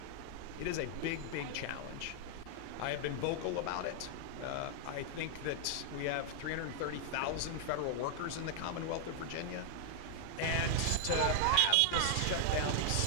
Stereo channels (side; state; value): both; different; correlation 0.00